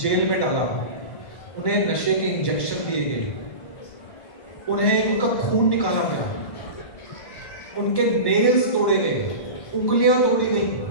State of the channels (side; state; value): right; late; 1.1 ms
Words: में डाला, उन्हें नशे के इंजेक्शन दिए गए, उन्हें उनका खून निकाला गया, उनके नेल्स तोड़े गए, उंगलियां तोड़ी गई।